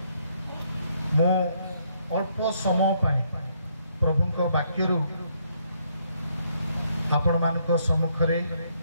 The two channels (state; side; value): inverted; both; correlation -0.71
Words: मो अल्प समय पाई प्रभुंक वाक्यरु आपण मानक सम्मुख रे